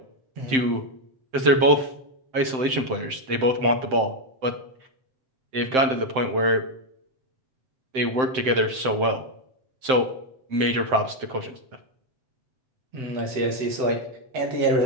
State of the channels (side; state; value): left; late; 7.7 ms